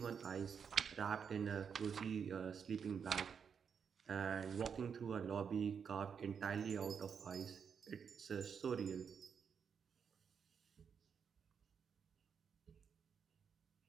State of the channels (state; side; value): quieter; left; 6.8 dB